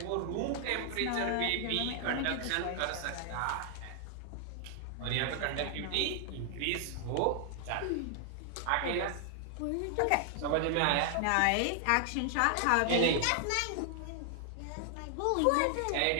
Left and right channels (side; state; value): both; different; correlation 0.00